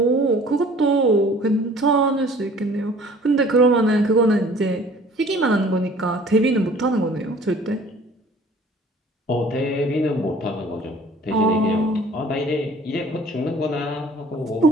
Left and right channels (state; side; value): normal; both; correlation 0.51